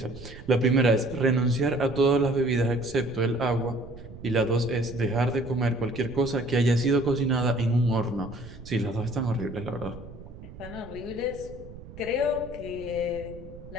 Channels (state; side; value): noise; right; rumble, 15 dB below the sound